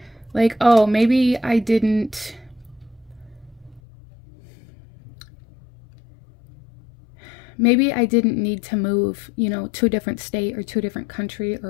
Like, oh, maybe I didn't need to move, to a different state or to a different country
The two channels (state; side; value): drops out; right; at 3.8 s